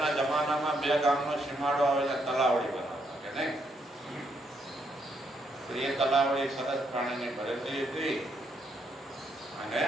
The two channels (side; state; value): both; normal; correlation 0.76